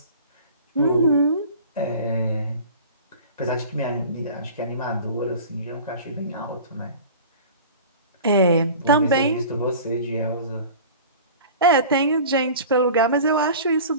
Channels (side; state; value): both; inverted; correlation -0.40